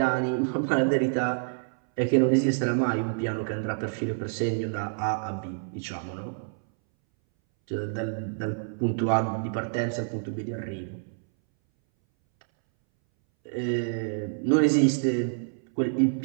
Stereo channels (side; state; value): left; silent; 60 dB below the other